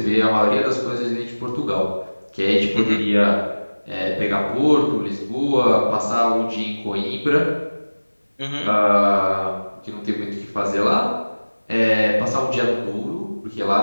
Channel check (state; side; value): inverted; both; correlation -1.00